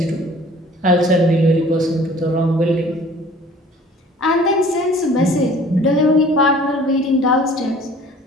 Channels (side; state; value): both; normal; correlation 0.50